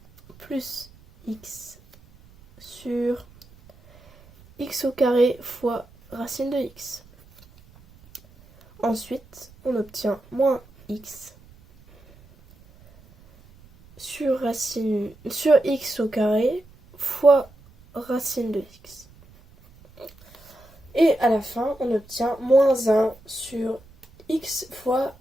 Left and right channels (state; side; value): noise; right; rumble, 26 dB below the sound